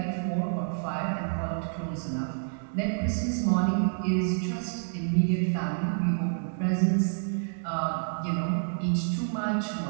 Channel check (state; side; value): silent; left; digital silence